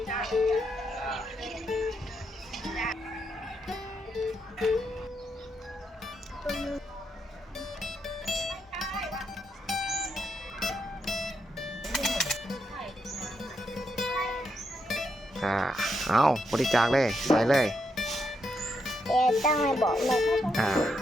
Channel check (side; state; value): both; normal; correlation 0.80